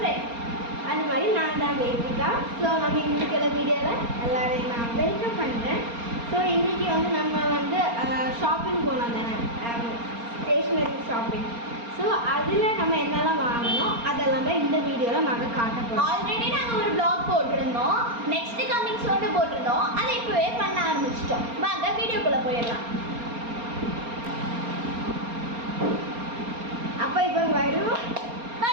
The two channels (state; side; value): late; left; 4.3 ms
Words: அது மாதிரி நான் தான் வேதிகா. ஸோ நம்ம இன்றைக்கி வீடியோவில் எல்லோரையும் நான் வெல்கம் பண்ணுறேன். ஸோ இன்றைக்கி வந்து நம்ம வந்து ஷாப்பிங் போனோம் தானே, ஸ்டேஷ்னரி ஷாப்பிங். ஸோ அதில் நம்ம என்னெல்லாம் வாங்கணும் அதெல்லாம் தான் இந்த வீடியோவில் நாங்கள் காட்ட போகிறோம். ஆல்ரெடி நாங்கள் ஒரு ப்ளாக் போட்டிருந்தோம், நெக்ஸ்ட் கமிங் சோன்னு போட்டிருந்தோம். அதை இப்போவே பண்ண ஆரம்பிச்சிட்டோம். வாங்க வீடியோக்குள்ளே போயிடலாம். அப்போ இப்போ வரும்